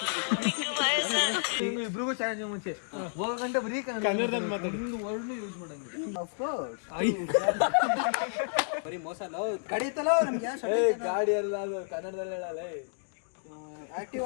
ಇಬ್ರಿಗೂ ಚಾಲೆಂಜ್ ಮುಂಚೆ ಹೋಗಂటే ಬರೀ ಕನ್ನಡದಲ್ಲಿ ಮಾತಾಡಿ ಒಂದು ವರ್ಡ್ ಯೂಸ್ ಮಾಡಂಗಿಲ್ಲ. ಆಫ್ ಕೋರ್ಸ್ ಬರೀ ಮೋಸ ಅಲ್ಲ ಕಡಿತಲ್ಲ ನಮ್ಗೆ. ಗಾಡಿ ಅಲ್ಲ ಅದು ಕನ್ನಡದಲ್ಲಿ ಹೇಳಲ್ಲ.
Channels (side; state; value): right; silent; digital silence